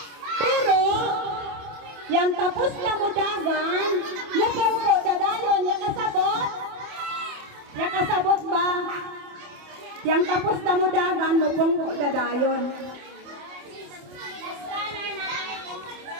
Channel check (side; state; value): left; late; 28 ms